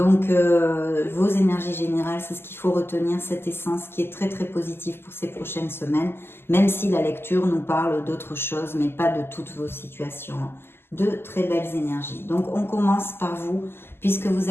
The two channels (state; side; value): late; right; 0.11 ms